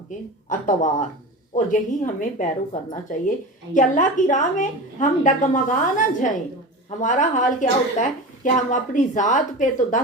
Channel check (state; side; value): normal; both; correlation 0.29